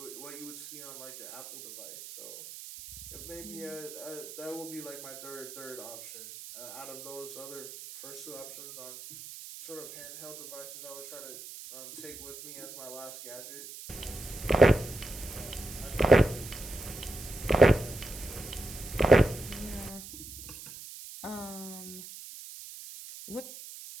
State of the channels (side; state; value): right; noise; hiss, 13 dB below the sound